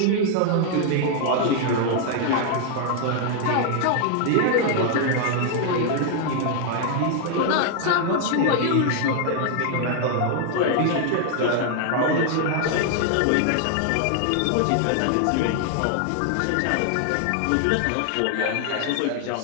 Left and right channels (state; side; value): different; both; correlation 0.00